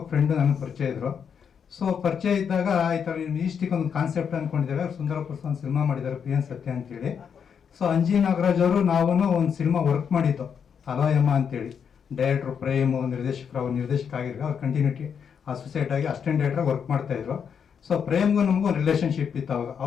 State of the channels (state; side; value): quieter; right; 7.2 dB